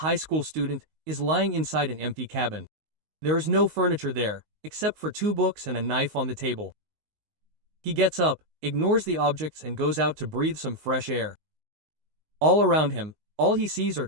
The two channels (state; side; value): late; left; 19 ms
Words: high school student, is lying inside an empty cabin. There is no furniture there, except for 2 books and a knife on the table. He gets up, ignores the objects and goes out to breathe some fresh air. All around him, all he sees are